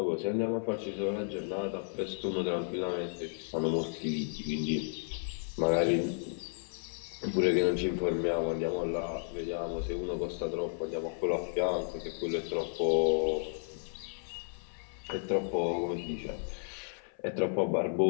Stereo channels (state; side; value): silent; right; 56 dB below the other